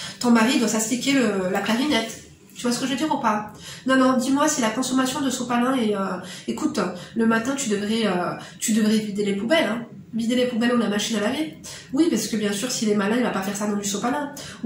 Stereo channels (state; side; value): identical; both; correlation 1.00